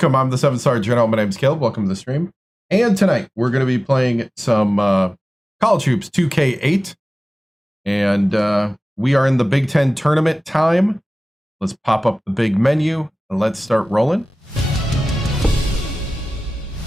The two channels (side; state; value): both; normal; correlation 0.97